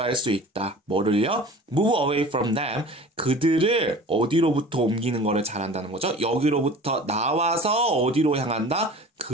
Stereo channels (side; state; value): both; normal; correlation 0.41